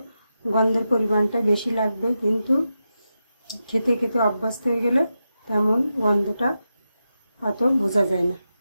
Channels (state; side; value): inverted; both; correlation -0.89